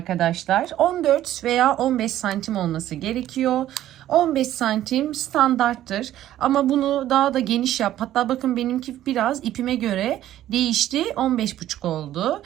14 veya 15 santim olması gerekiyor. 15 santim standarttır ama bunu daha da geniş yap. Hatta bakın benimki biraz ipime göre değişti. 15,5 oldu.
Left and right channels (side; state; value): left; quieter; 12.9 dB